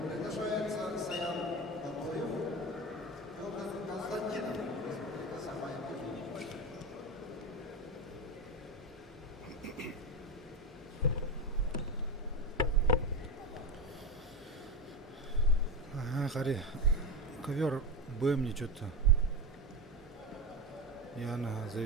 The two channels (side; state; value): both; normal; correlation 0.19